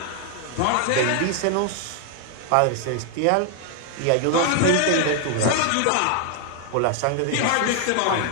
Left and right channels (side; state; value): both; different; correlation 0.00